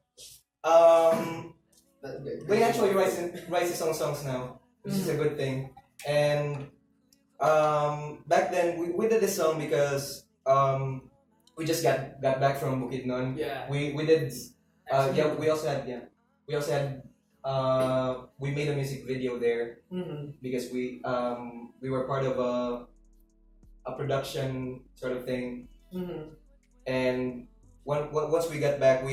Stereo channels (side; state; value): both; identical; correlation 1.00